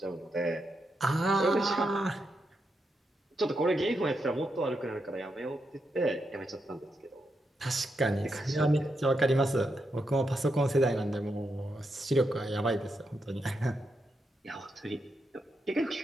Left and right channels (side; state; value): both; normal; correlation 0.84